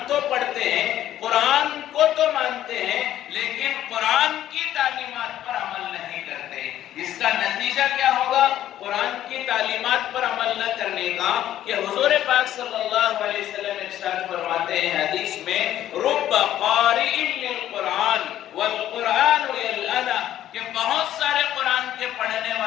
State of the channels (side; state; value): right; quieter; 12.2 dB